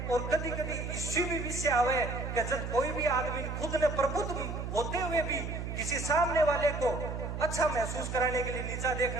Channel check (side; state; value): right; noise; hum, 5 dB below the sound